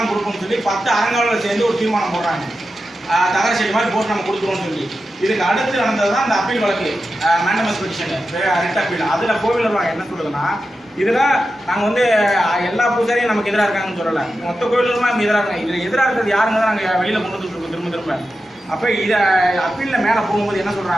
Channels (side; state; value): both; normal; correlation 0.91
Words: கொடுப்போம்னு சொல்லி 10 அறங்காவலர் சேர்ந்து ஒரு தீர்மானம் போடுறாங்க. தகர செடி மாதிரி போட்டு நம்ம கொடுத்துருவோம்னு சொல்லி. இதுக்கு அடுத்து நடந்தது தான் இந்த அப்பீல் வழக்கு, மேண்டமஸ் பெட்டிஷன் ரிட் அப்பீல். அதில் கோவில் நிர்வாகம் என்ன சொல்லுதுன்னா, இதில் நாங்கள் வந்து எல்லா பூஜாரியும் நமக்கு எதிராக இருக்காங்கன்னு சொல்லலை, மொத்த கோயிலுமா நம்ம எதிராக இருக்காங்க. இதில் எதிராக இருக்கிறது யாருங்க தான் நாங்கள் வெளியில் கொண்டு வந்துருக்கோம் திரும்ப. அப்போ இதை அப்பீலில் மேலே போகும்போது என்ன